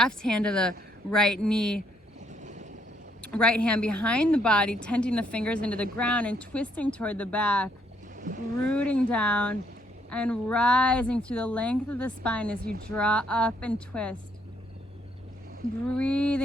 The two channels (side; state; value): both; normal; correlation 0.71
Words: hand to the right knee, right hand behind the body, tenting the fingers into the ground and twisting toward the back, rooting down and rising through the length of the spine as you draw up and twist.